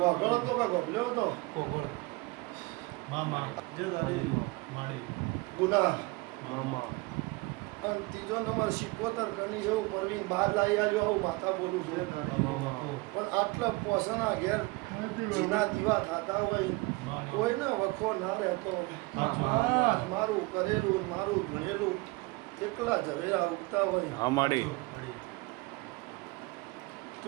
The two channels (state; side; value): quieter; left; 24.5 dB